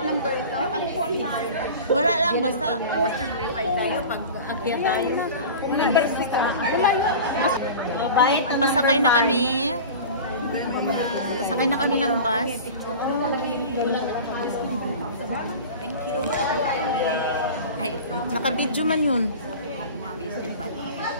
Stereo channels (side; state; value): both; inverted; correlation -0.35